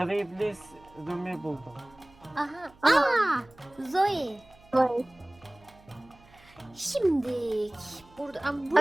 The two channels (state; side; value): noise; right; hum, 27 dB below the sound